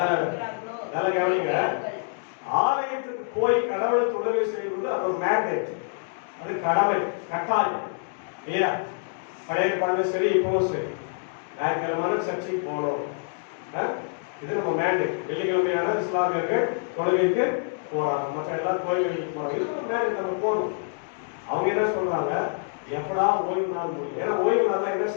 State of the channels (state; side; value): silent; right; digital silence